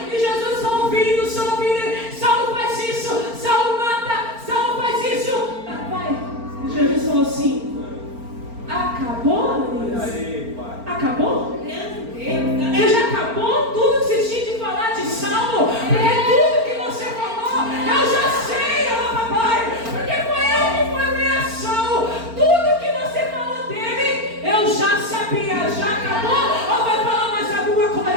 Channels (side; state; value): left; late; 4.4 ms